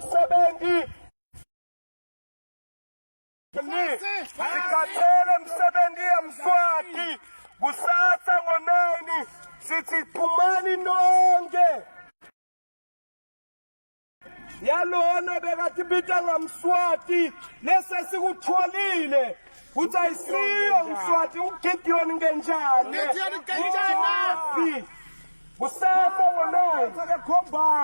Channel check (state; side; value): inverted; both; correlation -1.00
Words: sikhathele msebenzi eMswati kusasa ngo9 sithi phumani nonke yalona bekathi bita ngamswati lese sikutholile uthi ayisiyo Mswati uGideon ngenjani Kusasa ngonono